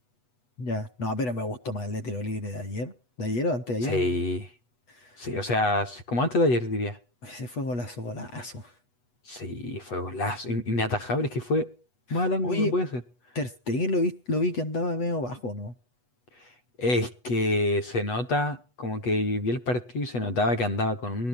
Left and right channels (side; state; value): right; late; 8.2 ms